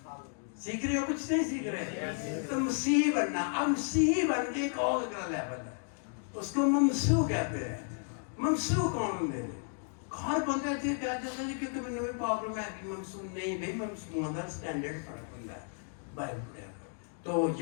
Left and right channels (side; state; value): right; silent; 56 dB below the other